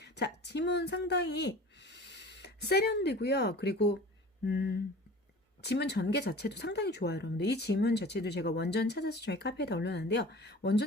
자, 지문 상당히 세련되고요. 그리고 지문 전개 자체도 상당히 좋아요, 여러분들. 이 지문 자체도 제가 원전 찾아서 저희 카페에다 올려놨는데요.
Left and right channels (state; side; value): normal; both; correlation 0.41